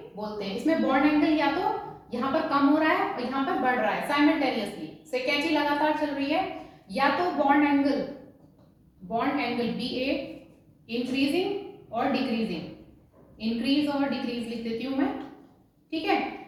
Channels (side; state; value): both; identical; correlation 1.00